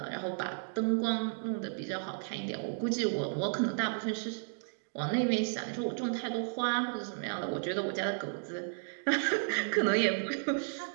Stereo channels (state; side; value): silent; left; digital silence